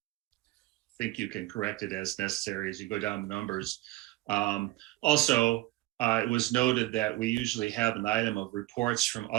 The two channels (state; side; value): quieter; left; 18.3 dB